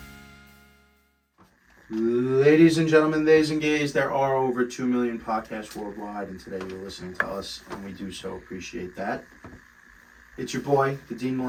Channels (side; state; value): both; identical; correlation 1.00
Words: Ladies and gentlemen, theys and gays, there are over 2 million podcasts worldwide, and today you're listening to us, and we do so appreciate that. It's your boy, the Dean